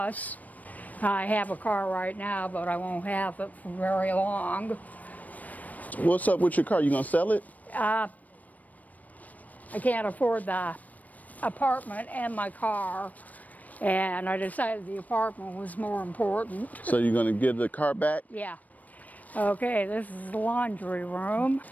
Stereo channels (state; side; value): late; right; 0.075 ms